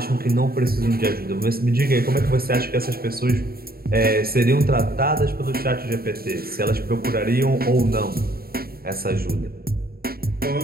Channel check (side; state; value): left; late; 0.44 ms